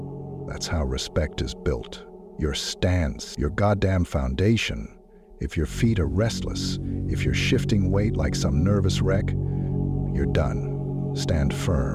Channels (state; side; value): identical; both; correlation 1.00